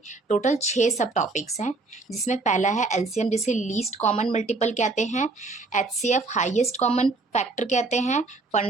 टोटल 6 सब टॉपिक्स हैं, जिसमें पहला है एलसीएम, जिसे लीस्ट कॉमन मल्टीपल कहते हैं, HCF हाईएस्ट कॉमन फैक्टर कहते हैं,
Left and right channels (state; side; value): quieter; left; 3.5 dB